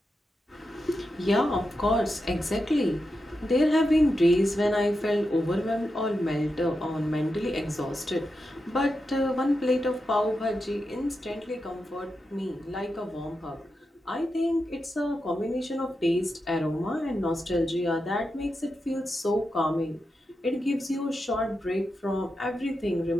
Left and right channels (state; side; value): normal; both; correlation 0.88